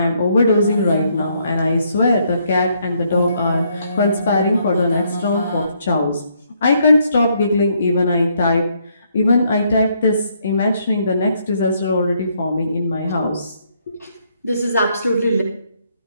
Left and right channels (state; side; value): inverted; both; correlation -0.72